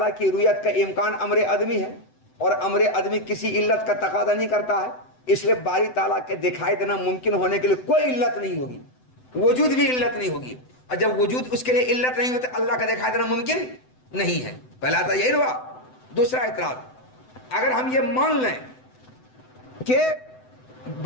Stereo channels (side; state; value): right; late; 7.9 ms